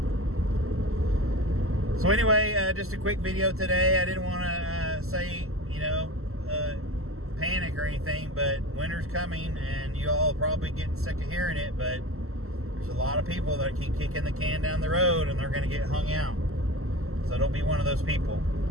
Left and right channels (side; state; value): left; late; 0.63 ms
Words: So anyway, just a quick video today. I didn't want to say, panic or anything, but winter's coming, and you all are probably getting sick of hearing it, but there's a lot of people that keep kicking the can down the road, and they're going to get hung out. So don't be one of those people.